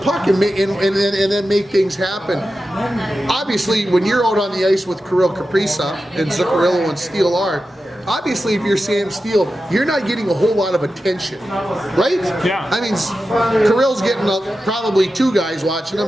and then make things happen. Obviously, when you're out on the ice with Kirill Kaprizov and Zuccarello and Steele are, obviously, if you're Sam Steele, you're not getting a whole lot of attention, right? Yeah. I mean, Kirill's getting probably two guys watching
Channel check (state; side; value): normal; both; correlation 0.92